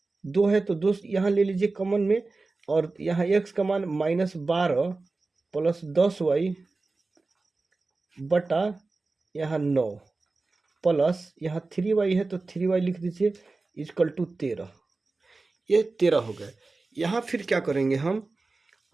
2 है तो 2 यहाँ ले लीजिए कॉमन में, और यहाँ x का मान -12 प्लस 10y बटा यहाँ 9 प्लस यहाँ 3y है तो 3y लिख दीजिए इजकल टू 13। ये 13 हो गए। यहाँ फिर क्या करेंगे हम?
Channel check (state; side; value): quieter; left; 3.6 dB